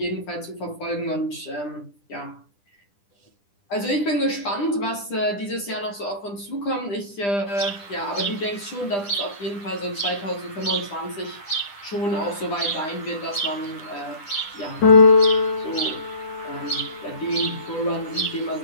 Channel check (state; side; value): late; right; 10 ms